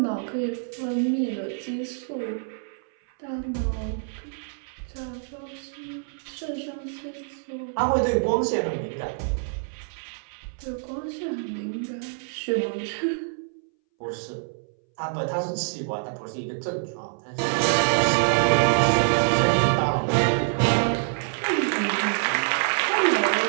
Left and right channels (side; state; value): left; silent; 61 dB below the other